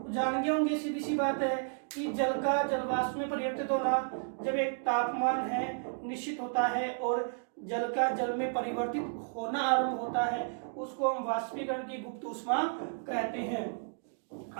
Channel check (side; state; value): left; silent; digital silence